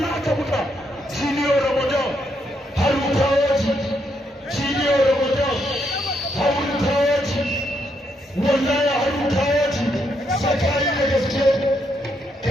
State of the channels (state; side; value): normal; both; correlation 0.77